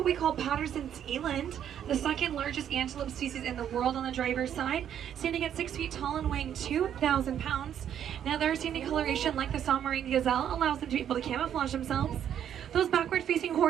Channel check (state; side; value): quieter; left; 9.6 dB